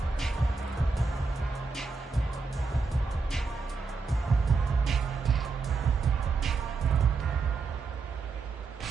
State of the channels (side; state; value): left; quieter; 4.3 dB